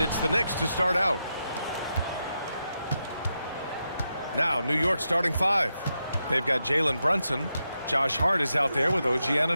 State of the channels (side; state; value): both; inverted; correlation -0.86